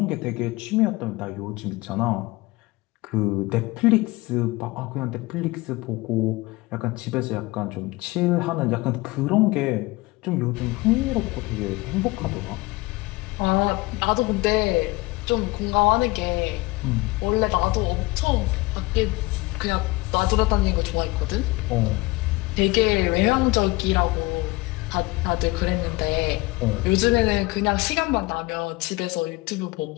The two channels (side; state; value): right; quieter; 22.1 dB